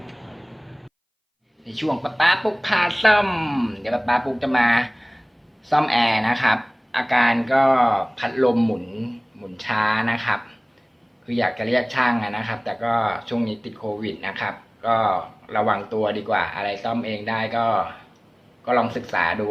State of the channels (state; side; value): identical; both; correlation 1.00